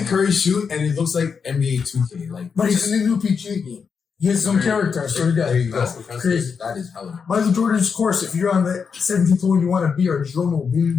Curry shoot and it looks like NBA 2K. Like, but he's in the new PGA game. He has some character, I swear to God. There you go. Crazy. That is hella. Michael Jordan's course, if you're on the 17th hole and you want a beer, Jerome will bring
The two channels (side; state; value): right; quieter; 6.0 dB